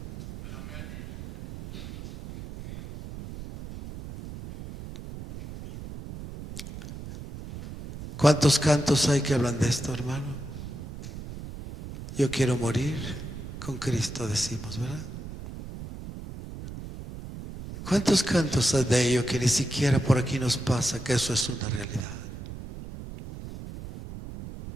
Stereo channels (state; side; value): noise; right; rumble, 11 dB below the sound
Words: ¿Cuántos cantos hay que hablan de esto, hermano? Yo quiero morir con Cristo, decimos, ¿verdad? ¿Cuántos cantos hay de ello que ni siquiera por aquí nos pasa que eso es una realidad?